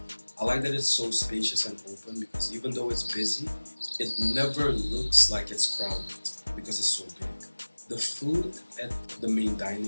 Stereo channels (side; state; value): both; inverted; correlation -1.00